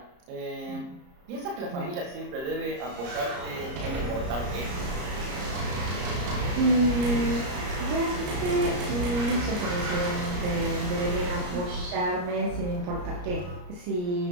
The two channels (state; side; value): late; left; 34 ms